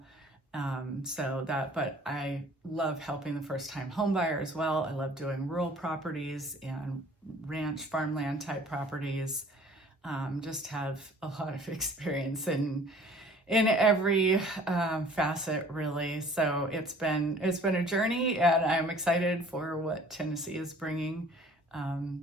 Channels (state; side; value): normal; both; correlation 0.51